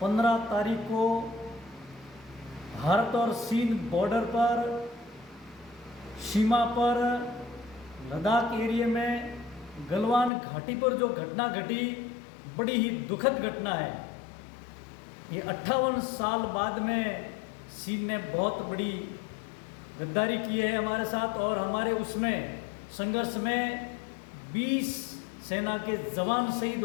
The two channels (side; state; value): right; drops out; at 10.3 s